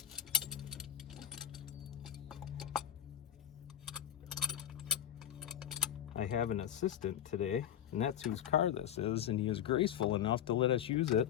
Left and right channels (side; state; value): right; quieter; 10.4 dB